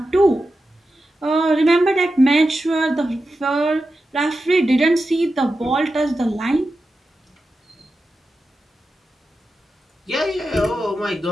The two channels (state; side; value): normal; both; correlation 0.91